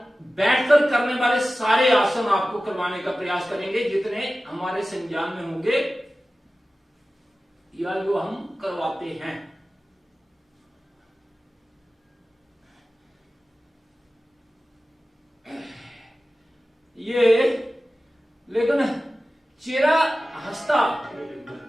बैठकर करने वाले सारे आसन आपको करवाने का प्रयास करेंगे, जितने हमारे संज्ञान में होंगे या जो हम करवाते हैं। ये लेकिन चेहरा हंसता,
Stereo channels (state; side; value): normal; both; correlation 0.95